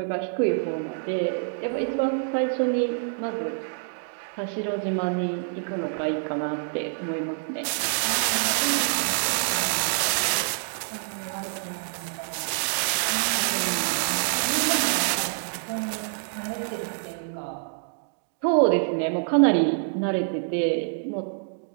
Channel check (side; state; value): left; silent; digital silence